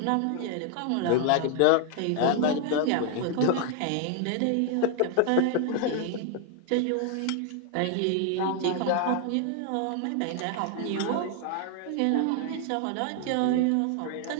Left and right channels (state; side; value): different; both; correlation 0.00